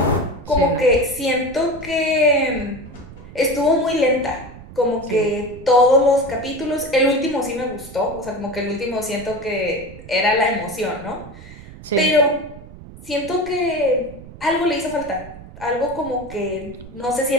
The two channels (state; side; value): noise; right; rumble, 17 dB below the sound